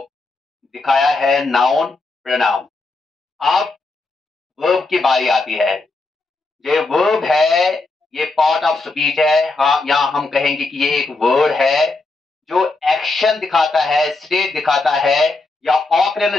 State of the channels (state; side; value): quieter; right; 3.4 dB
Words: दिखाया है नाउन, प्रोनाउन। अब वर्ब की बारी आती है। ये वर्ब है, ये पार्ट ऑफ स्पीच है। हाँ, यहाँ हम कहेंगे कि ये एक वर्ड है जो एक्शन दिखाता है, स्टेट दिखाता है या